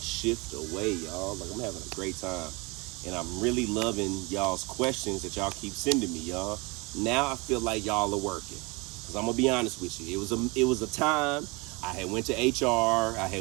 shift away, y'all. Like, I'm having a great time. And I'm really loving y'all's questions that y'all keep sending me, y'all. Now I feel like y'all are working. Because I'm going to be honest with you. It was a time I had went to HR, I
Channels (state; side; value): quieter; left; 27.1 dB